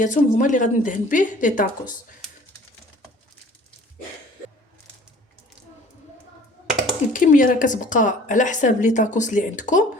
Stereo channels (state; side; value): normal; both; correlation 0.50